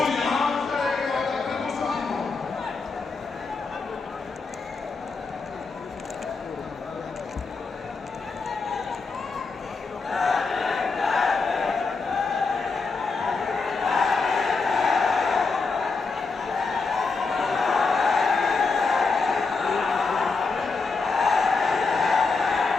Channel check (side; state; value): right; quieter; 4.3 dB